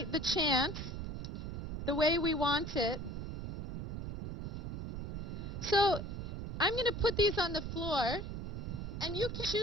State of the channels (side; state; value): right; noise; rumble, 4 dB below the sound